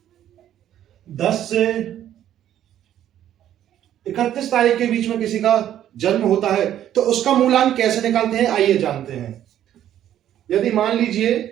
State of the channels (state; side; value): quieter; left; 11.3 dB